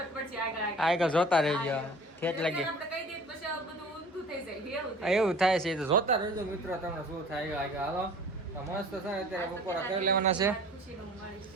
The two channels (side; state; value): both; normal; correlation 0.45